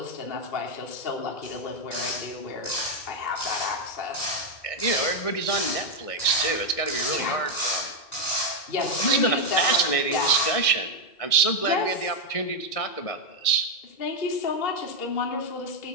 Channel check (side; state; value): right; late; 1.6 ms